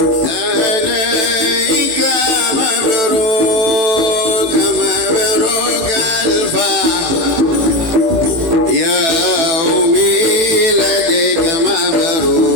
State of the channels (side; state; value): left; late; 19 ms